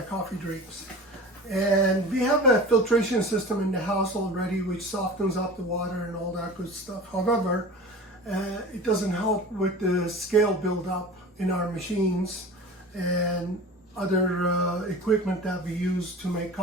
coffee drinks. And we have a filtration system in the house already which softens up the water and all that good stuff. However, it doesn't help with the scale buildup in our machines and other equipment that we use to make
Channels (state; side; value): normal; both; correlation 0.36